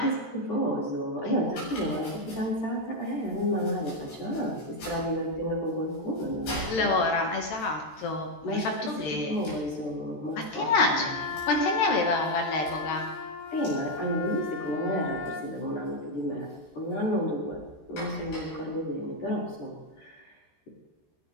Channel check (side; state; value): right; late; 13 ms